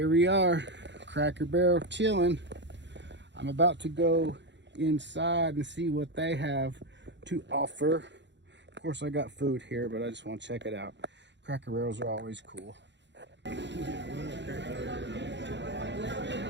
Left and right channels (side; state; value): left; late; 0.52 ms